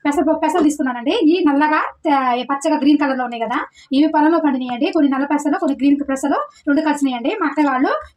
పెసలు తీసుకున్నానండి ఈ నల్లగా పచ్చగా గ్రీన్ కలర్ లో ఉన్నాయి కదా ఇవి పొలంలో పండినాయండి కొన్ని నల్ల పెసలు కొన్ని గ్రీన్ పెసలు రెండు కలిసినాయండి మా అక్క వాళ్ళు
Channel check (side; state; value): both; identical; correlation 1.00